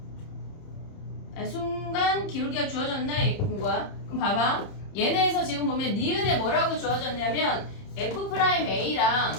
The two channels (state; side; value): late; right; 30 ms